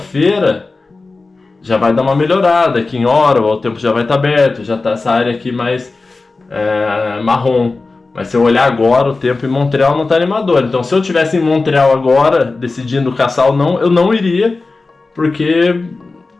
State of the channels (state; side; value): quieter; right; 3.7 dB